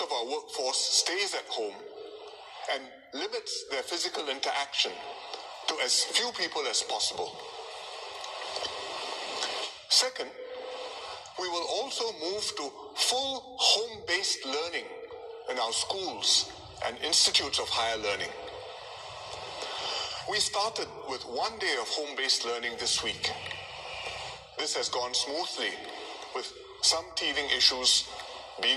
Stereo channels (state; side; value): identical; both; correlation 1.00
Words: our workforce stays at home and limits their physical interaction to as few people as possible. Second, we will also move to full home-based learning in our schools and institutes of higher learning. We started with 1 day of home-based learning this week. This has gone smoothly, with some teething issues